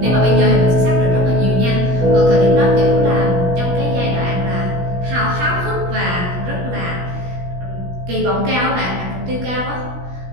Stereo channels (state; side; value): late; left; 16 ms